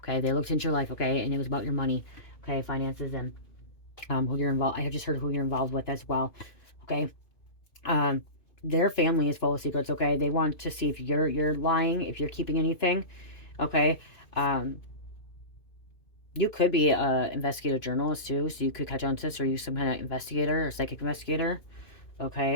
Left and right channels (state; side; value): late; right; 2.5 ms